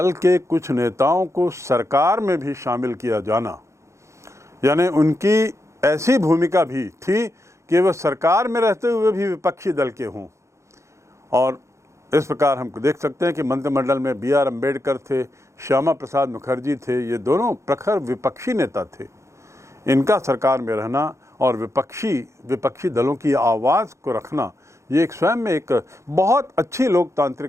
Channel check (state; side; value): late; left; 0.14 ms